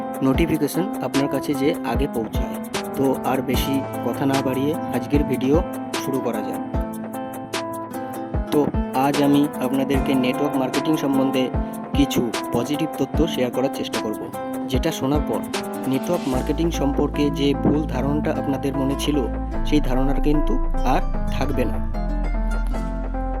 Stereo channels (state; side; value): identical; both; correlation 1.00